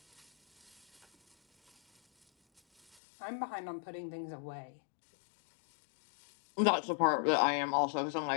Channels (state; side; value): drops out; right; at 3.0 s